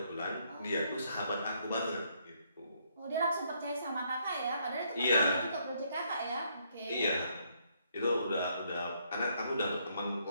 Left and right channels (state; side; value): inverted; both; correlation -0.71